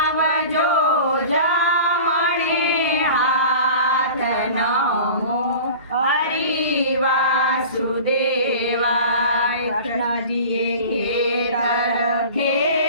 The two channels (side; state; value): both; inverted; correlation -0.39